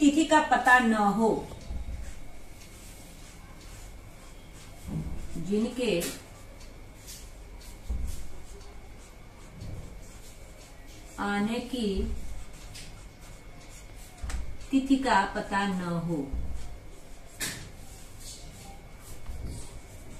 का पता न हो। जिनके आने की तिथि का पता न हो।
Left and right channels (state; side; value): identical; both; correlation 1.00